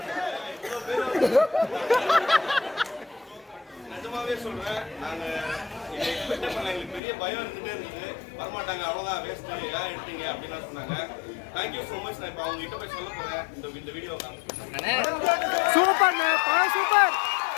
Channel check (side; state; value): right; drops out; at 7.0 s